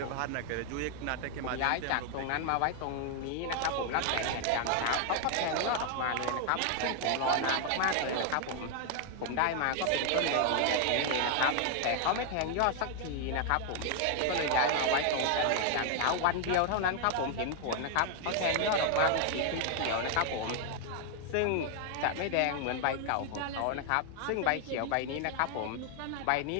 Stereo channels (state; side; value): different; both; correlation 0.00